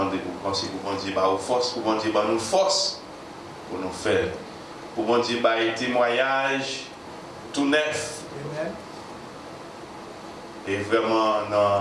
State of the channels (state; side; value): identical; both; correlation 1.00